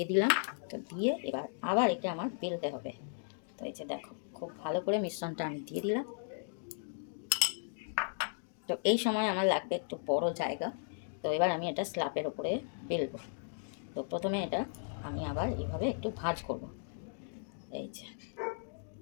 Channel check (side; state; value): right; silent; digital silence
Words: দিলাম। তো দিয়ে এবার আবার একে আমার বেলতে হবে। তো এই যে দেখো খুব ভালো করে মিশ্রণটা আমি দিয়ে দিলাম। তো এই সময় আমার লাগবে একটু বড় জায়গা। তো এবার আমি এটা স্ল্যাবের ওপরে বেলবো। তো প্রথমে এটা আমি আবার এইভাবে একটু ভাঁজ করব, এই যে